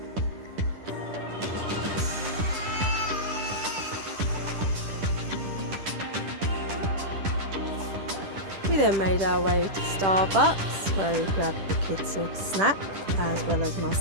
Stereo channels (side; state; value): left; late; 10 ms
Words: We then made our way to Starbucks where we grabbed the kids a snack as well as